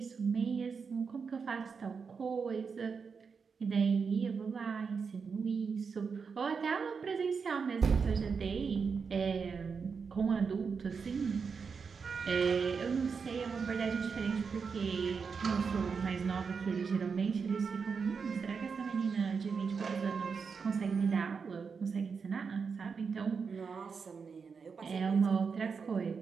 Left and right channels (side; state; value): left; quieter; 5.6 dB